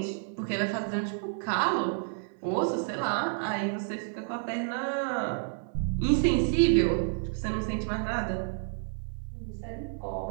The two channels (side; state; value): left; silent; digital silence